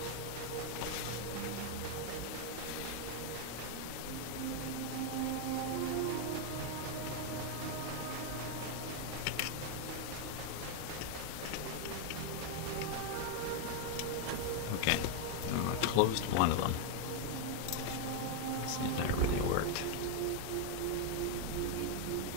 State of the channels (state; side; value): different; both; correlation 0.01